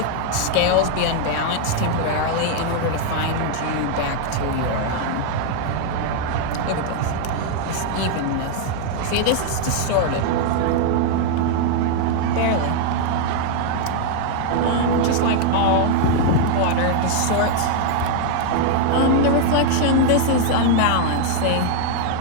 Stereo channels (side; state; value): both; different; correlation 0.00